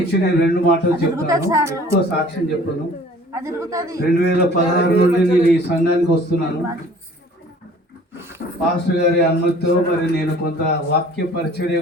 నేను 2 మాటలు చెప్తాను, ఎక్కువ సాక్ష్యం చెప్పను. 2016 నుండి నేను ఈ సంఘానికి వస్తున్నాను. పాస్టర్ గారి అనుమతితో మరి నేను కొంత వాక్య పరిచర్య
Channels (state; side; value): normal; both; correlation 0.50